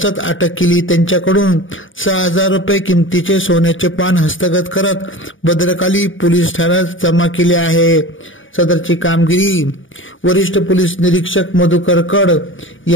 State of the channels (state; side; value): late; right; 0.57 ms